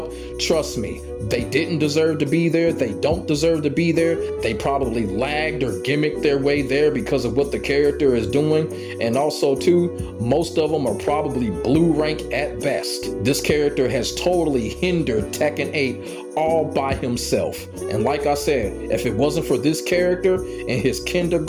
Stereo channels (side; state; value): both; identical; correlation 1.00